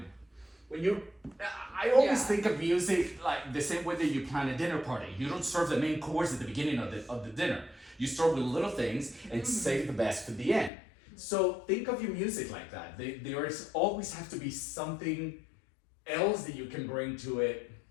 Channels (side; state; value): right; drops out; at 10.7 s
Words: When you, I always think of music like the same way that you plan a dinner party. You don't serve the main course at the beginning of the dinner. You start with little things and save the best for the end. So think of your music like that. There is always have to be something else that you can bring to it